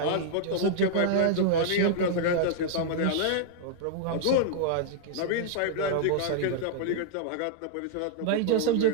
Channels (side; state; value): both; different; correlation -0.01